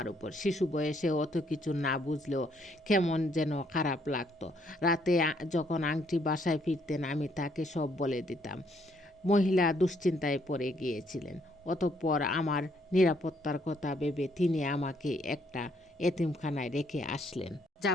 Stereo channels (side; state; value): both; normal; correlation 0.70